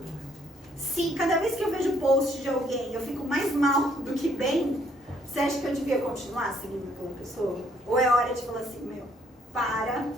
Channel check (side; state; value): both; normal; correlation 0.67